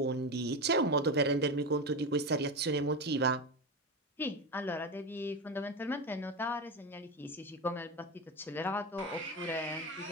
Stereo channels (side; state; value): both; normal; correlation 0.19